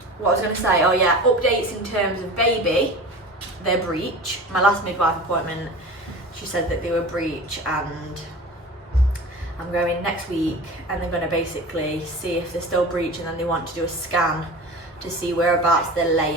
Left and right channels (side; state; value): both; normal; correlation 0.35